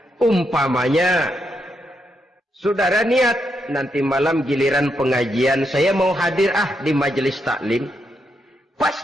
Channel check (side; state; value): both; normal; correlation 0.81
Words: Umpamanya, saudara niat, nanti malam giliran pengajian, saya mau hadir di majelis taklim. Pas